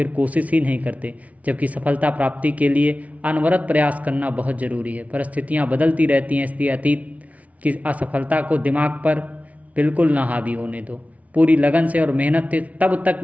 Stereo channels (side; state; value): left; late; 0.068 ms